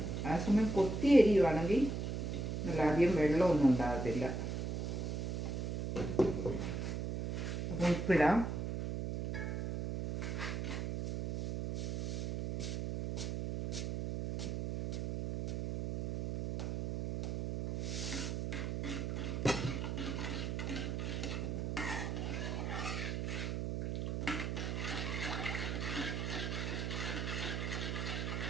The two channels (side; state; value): right; noise; hum, 2 dB below the sound